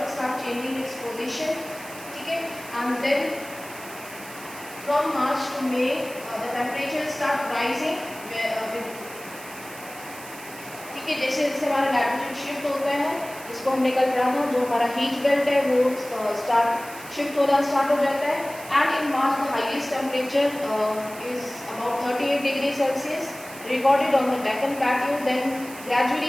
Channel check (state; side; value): noise; right; hiss, 16 dB below the sound